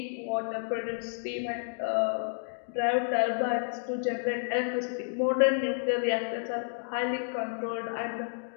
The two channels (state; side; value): silent; right; digital silence